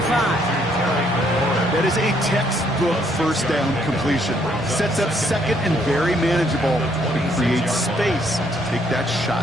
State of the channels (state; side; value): normal; both; correlation 0.69